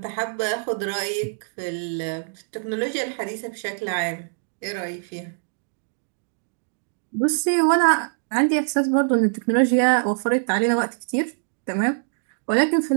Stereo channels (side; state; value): left; silent; digital silence